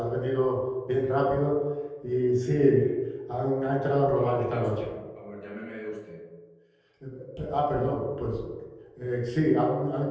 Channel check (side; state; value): both; identical; correlation 1.00